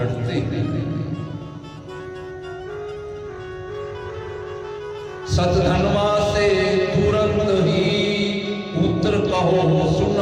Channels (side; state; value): both; identical; correlation 1.00